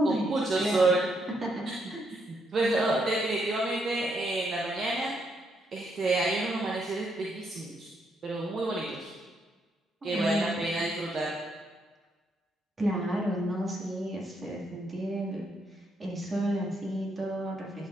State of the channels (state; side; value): normal; both; correlation 0.76